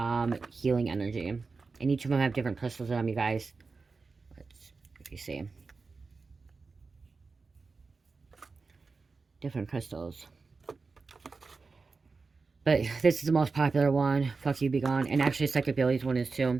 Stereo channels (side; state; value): left; quieter; 4.3 dB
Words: healing energy. And each of them have different crystals in them, you guys. If you see. Different crystals. But this is the most popular one. Fuck you, be gone. And actually, Psychic Abilities one is